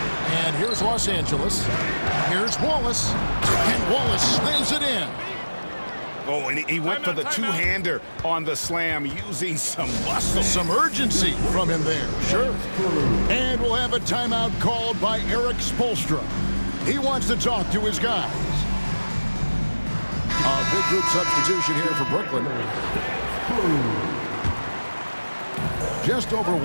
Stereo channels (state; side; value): inverted; both; correlation -1.00